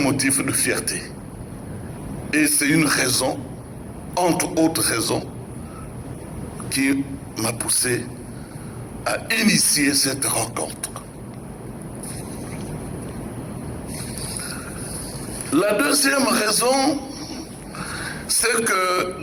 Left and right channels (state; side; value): identical; both; correlation 1.00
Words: de fierté. Et c'est une raison, entre autres raisons, qui m'a poussé à initier cette rencontre. La deuxième raison, c'est